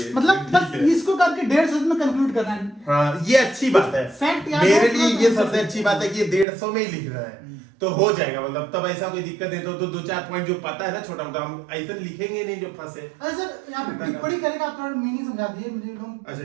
मतलब बस इसको करके 150 शब्द में कंक्लूड करना है। हाँ, ये अच्छी बात है। फैक्ट याद मेरे हो लिए तो ये सबसे अच्छी बात है कि ये 150 में ही लिख रहा है, तो हो जाएगा। मतलब तब ऐसा कोई दिक्कत है तो 2-4 पॉइंट जो पता है ना छोटा मोटा, हम ऐसे लिखेंगे नहीं जो फंसे। अरे सर, यहाँ पे टिप्पणी करेगा, आप थोड़ा मीनिंग समझा दीजिए मुझे। लोग अच्छा,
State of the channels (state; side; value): drops out; left; at 6.5 s